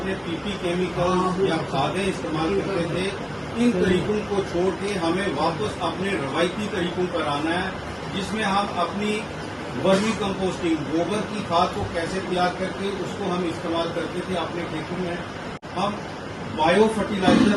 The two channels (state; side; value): identical; both; correlation 1.00